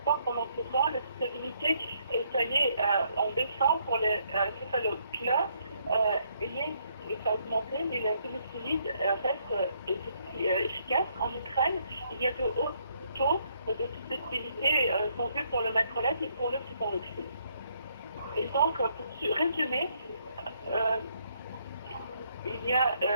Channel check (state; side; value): inverted; both; correlation -0.71